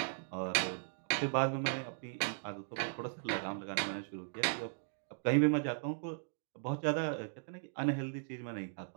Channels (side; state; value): left; silent; digital silence